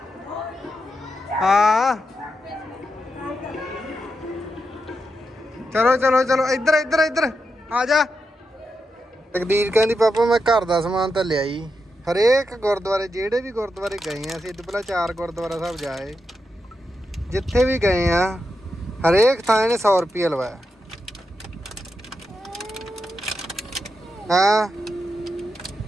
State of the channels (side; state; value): both; normal; correlation 0.86